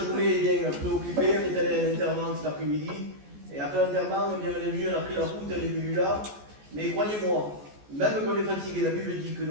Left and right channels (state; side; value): late; left; 14 ms